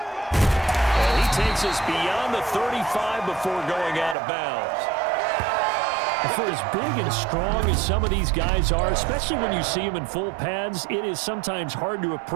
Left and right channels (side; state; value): left; drops out; at 4.2 s